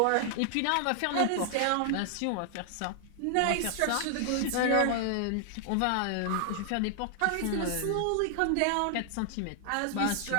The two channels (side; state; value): both; different; correlation 0.00